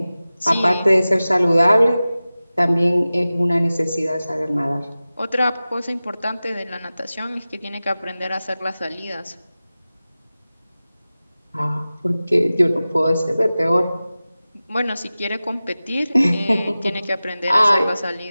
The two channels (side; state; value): both; inverted; correlation -0.96